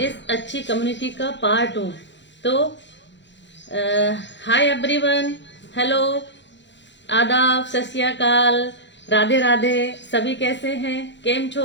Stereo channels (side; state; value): right; late; 0.52 ms